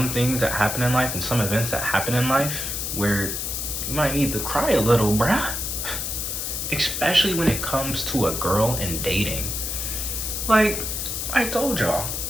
things that happen in life and some events that happen in life where you might need to cry a little, bruh. Especially when it comes to a girl and dating. Like, I told y'all,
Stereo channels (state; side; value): noise; left; hiss, 3 dB below the sound